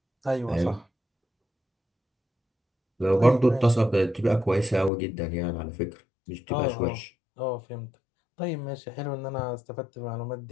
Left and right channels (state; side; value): drops out; right; at 4.9 s